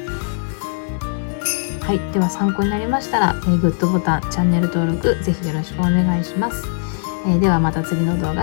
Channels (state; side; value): silent; right; digital silence